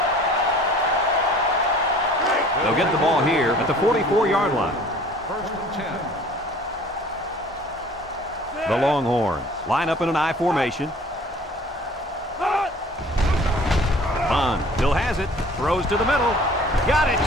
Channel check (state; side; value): normal; both; correlation 0.50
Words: They'll get the ball here at the 44-yard line. 1st and 10. The Longhorns line up in an I formation. Bond still has it. Throws to the middle. Got it